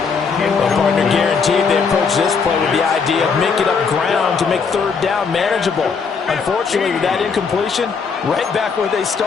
Well, partner, guaranteed they approach this play with the idea of making up ground to make 3rd down manageable. Unfortunately, with that incompletion, right back where they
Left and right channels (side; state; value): right; quieter; 5.5 dB